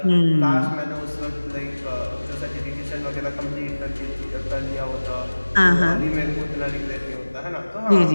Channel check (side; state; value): both; inverted; correlation -1.00